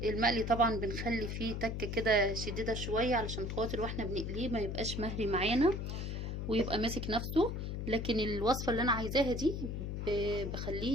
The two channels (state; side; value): noise; left; hum, 4 dB below the sound